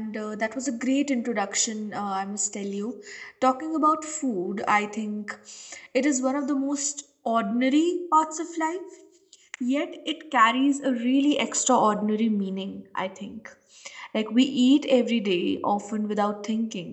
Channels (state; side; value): identical; both; correlation 1.00